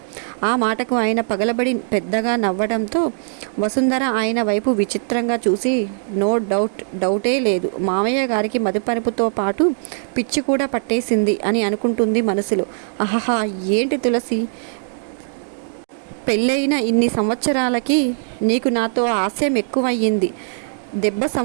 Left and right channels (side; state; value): left; silent; 66 dB below the other